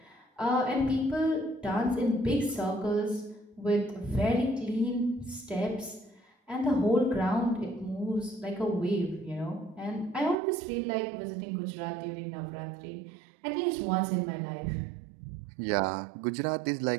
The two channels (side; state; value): left; drops out; at 10.4 s